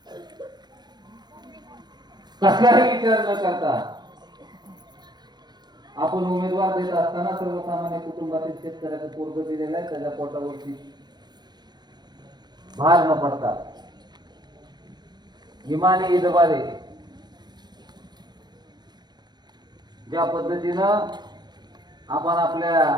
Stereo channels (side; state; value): left; late; 0.21 ms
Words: कसलाही विचार न करता आपण उमेदवार देत असताना सर्वसामान्य कुटुंबातील शेतकऱ्याचं पोरग दिलेलं आहे, त्याच्या पोटावरती भार न पडता इमानी इदबारे ज्या पद्धतीनं आपण आपल्या